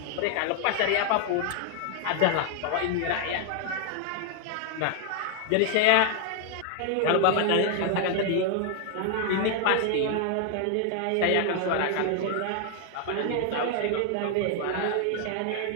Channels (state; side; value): different; both; correlation 0.00